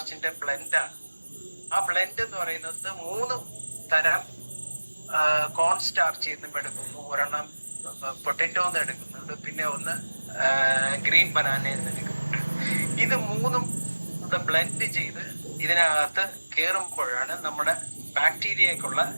ബ്ലെൻഡാണ്. ആ ബ്ലെൻഡ് എന്ന് പറയുന്നത് 3 തരം കോൺ സ്റ്റാർച്ച് നിന്നും എടുക്കുന്നു, ഒരെണ്ണം പൊട്ടറ്റോന്ന് എടുക്കുന്നുണ്ട്, പിന്നെ ഒന്ന് ഗ്രീൻ ബനാനയിൽ നിന്ന് എടുക്കുന്നുണ്ട്. ഇത് 3ഉം ബ്ലെൻഡ് ചെയ്ത് ഇതിനകത്ത് കയറുമ്പോഴാണ് നമ്മുടെ ബാക്ടീരിയക്കുള്ള,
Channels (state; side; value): inverted; both; correlation -1.00